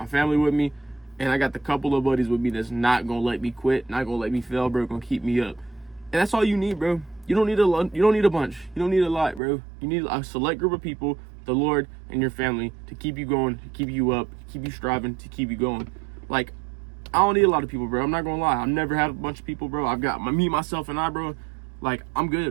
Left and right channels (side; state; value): left; drops out; at 9.4 s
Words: family with me, and I got the couple of buddies with me that's not gonna let me quit, not gonna let me fail, bro, gonna keep me up. And that's all you need, bro. You don't need a bunch. You don't need a lot, bro. You need a select group of people, the Lord and your family, to keep you going, to keep you up, to keep you striving, to keep you going. Like, I don't need a lot of people, bro. I'm not gonna lie. I've never had a bunch of people, bro. I've got me, myself, and I, bro. Like, I'm